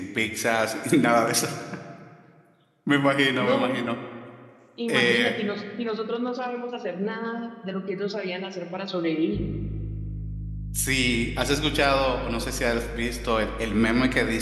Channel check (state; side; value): identical; both; correlation 1.00